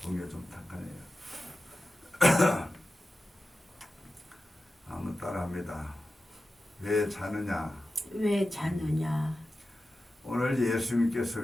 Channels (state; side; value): normal; both; correlation 0.93